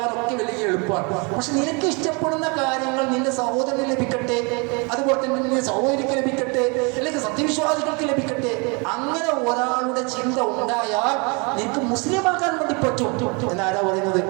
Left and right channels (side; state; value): left; quieter; 31.4 dB